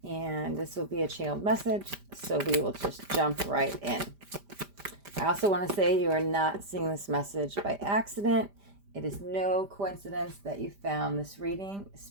And this will be a channeled message, so we will just jump right in. I also want to say you are not seeing this message by accident. It is no coincidence that you found this reading.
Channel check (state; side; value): late; left; 5.0 ms